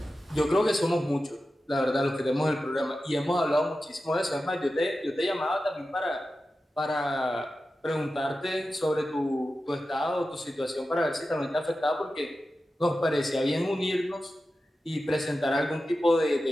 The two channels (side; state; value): both; normal; correlation 0.93